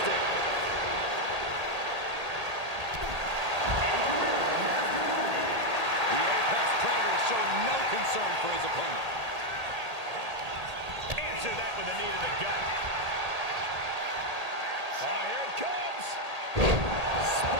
Concern for his opponent. Answer that with a knee to the gut. Oh, here it comes.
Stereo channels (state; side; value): late; left; 1.8 ms